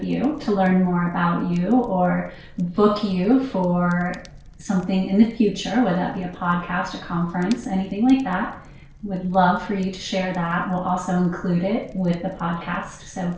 you to learn more about you or book you for something in the future, whether that be a podcast, a conference, anything like that, would love for you to share that. We'll also include it with the podcast so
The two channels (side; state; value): both; identical; correlation 1.00